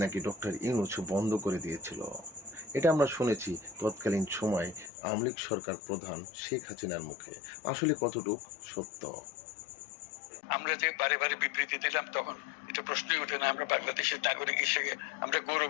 নাকি ডক্টর ইউনূস বন্ধ করে দিয়েছিল। এটা আমরা শুনেছি তৎকালীন সময় আওয়ামী লীগ সরকার প্রধান শেখ হাসিনার মুখে। আসলে কতটুক সত্য? আমরা যে বারে বারে বিবৃতি দিলাম তখন এটা প্রশ্নই ওঠে না। আমরা বাংলাদেশের নাগরিক হিসেবে আমরা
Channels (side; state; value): right; drops out; at 4.9 s